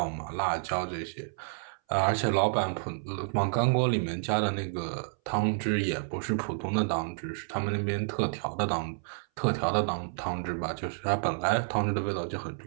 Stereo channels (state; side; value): silent; left; 58 dB below the other